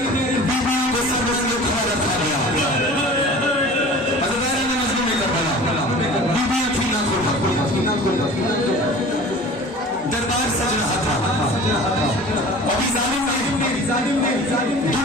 बीवी को सब लोग खड़ा रखा गया, दरबार सज रहा था। अभी जालिम ने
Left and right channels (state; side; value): normal; both; correlation 0.41